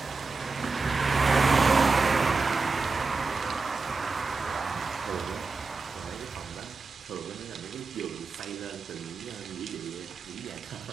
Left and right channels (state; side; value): quieter; left; 4.1 dB